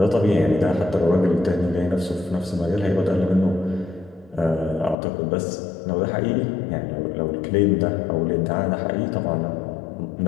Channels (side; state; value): right; drops out; at 5.0 s